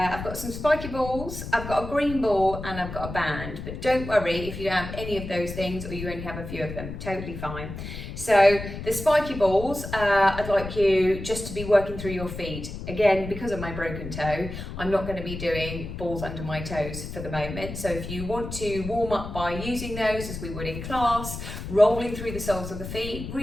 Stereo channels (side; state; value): left; noise; rumble, 8 dB below the sound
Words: got some spiky balls, I've got a green ball and I've got a band, but don't worry if you don't have any of those things or you only have a few of them, totally fine. So the spiky balls, I'd like you just to be working through your feet. Again, because of my broken toe, I'm not going to be doing balls under my toes for the moment. So if you want to warm up by using those as we would in class, rolling through the soles of the feet,